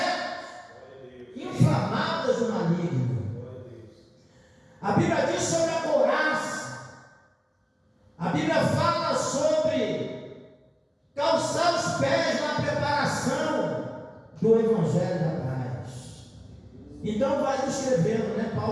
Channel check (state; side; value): identical; both; correlation 1.00